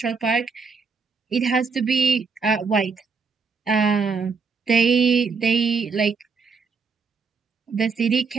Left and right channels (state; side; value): quieter; left; 5.0 dB